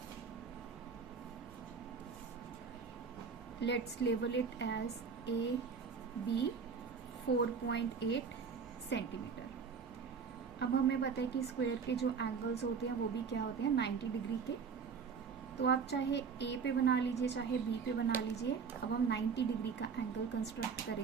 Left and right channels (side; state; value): left; quieter; 5.9 dB